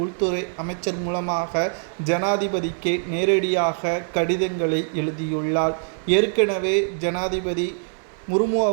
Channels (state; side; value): silent; left; digital silence